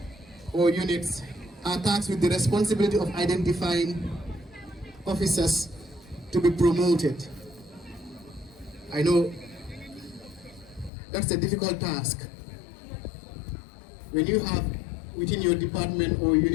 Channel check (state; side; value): drops out; right; at 10.9 s